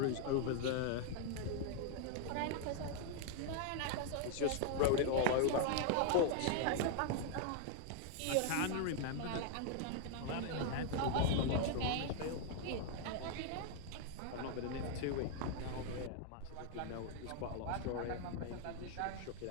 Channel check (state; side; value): different; both; correlation 0.00